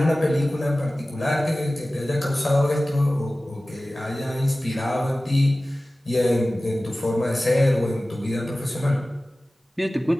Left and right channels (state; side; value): normal; both; correlation 0.97